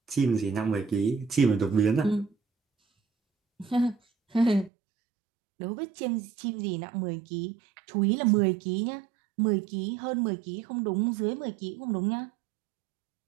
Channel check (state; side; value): drops out; left; at 4.7 s